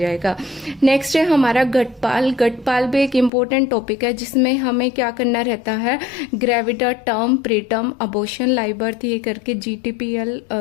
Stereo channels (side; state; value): right; drops out; at 3.3 s